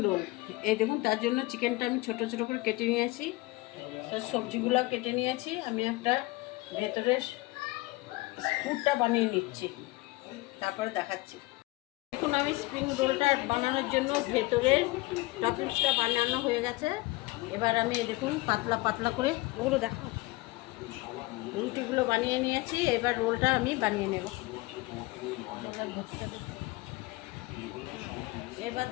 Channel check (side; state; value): right; quieter; 21.2 dB